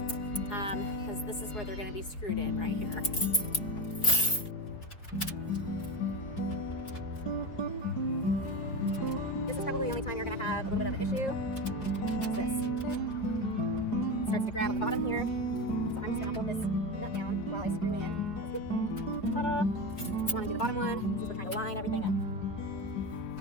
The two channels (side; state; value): right; late; 4.4 ms